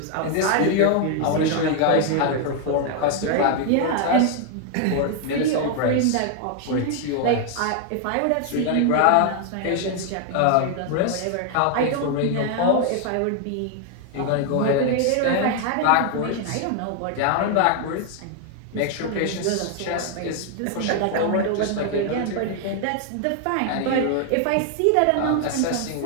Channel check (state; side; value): different; both; correlation 0.00